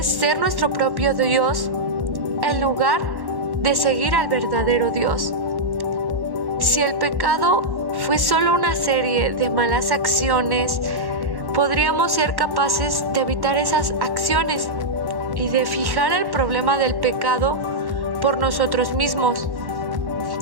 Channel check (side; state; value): left; late; 1.1 ms